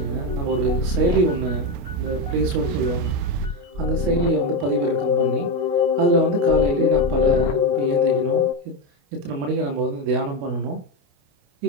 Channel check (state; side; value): late; left; 28 ms